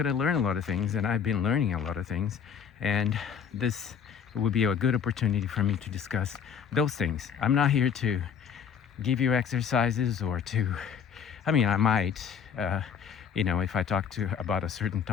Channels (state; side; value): quieter; right; 7.6 dB